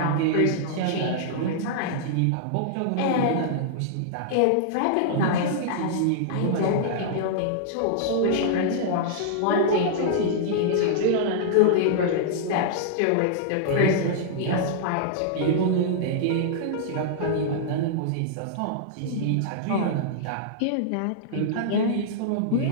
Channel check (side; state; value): both; different; correlation -0.02